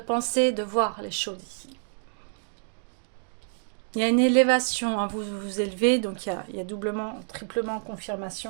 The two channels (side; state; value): left; silent; digital silence